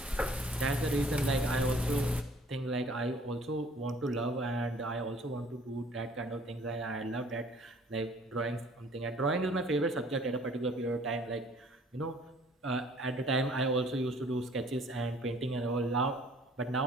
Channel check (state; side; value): normal; both; correlation 0.55